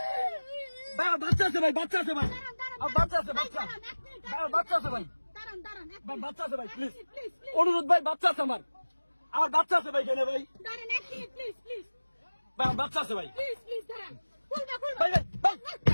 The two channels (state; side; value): inverted; both; correlation -1.00